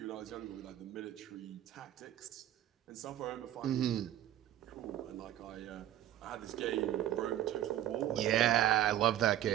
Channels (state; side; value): quieter; left; 12.4 dB